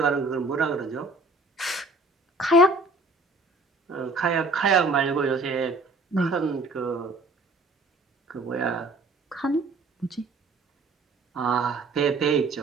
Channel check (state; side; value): quieter; left; 3.1 dB